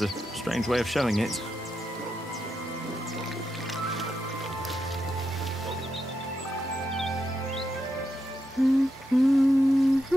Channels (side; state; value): both; normal; correlation 0.85